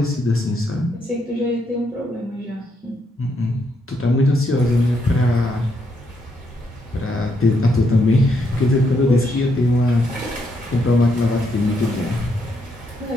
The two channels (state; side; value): normal; both; correlation 0.76